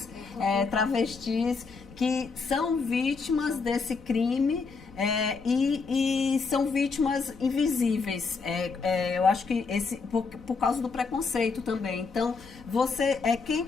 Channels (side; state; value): right; quieter; 4.7 dB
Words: travestis, que são vítimas desse crime. E são vítimas invisíveis. Eu acho que por causa do preconceito também. Então,